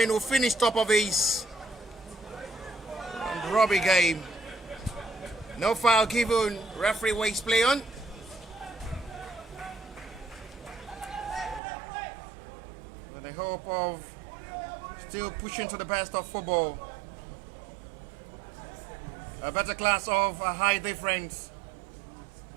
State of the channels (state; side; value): drops out; left; at 11.6 s